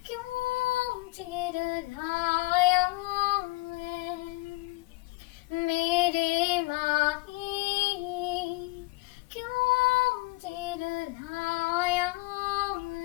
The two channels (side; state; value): right; quieter; 22.7 dB